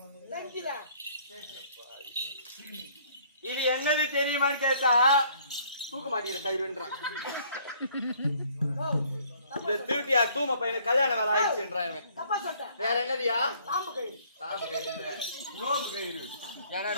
இது என்னது தெரியுமான்னு கேட்டா தூக்க மாட்டேங்கிற கயிறுன்றான். இந்த திருட்டியா தூம பையனுக்கு கல்யாணம் வேலை ஆயிடுச்சுன்றான். வேற என்னதியா? தாம்பு கயிறு. நோம்பு கயிறு. ஏன்னா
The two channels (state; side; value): inverted; both; correlation -0.60